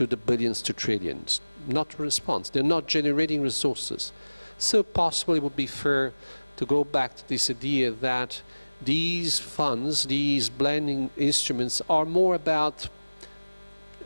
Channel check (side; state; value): both; inverted; correlation -1.00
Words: the billions to trillions. Not a response. They're not generating resources. So possibly it would be fair to go back to this idea that these funds, these blending instruments, are more about